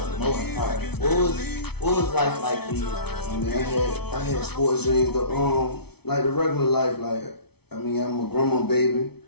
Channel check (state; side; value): late; right; 0.98 ms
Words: Moulton Park. What was life like for you? I mean, I had sports dreams, like the regular life. I'm a grandma baby.